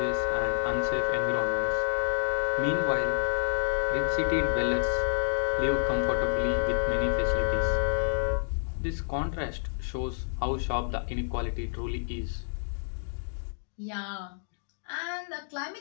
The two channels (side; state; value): right; silent; digital silence